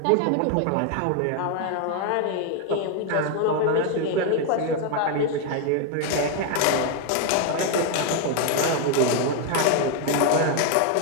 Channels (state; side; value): different; both; correlation 0.01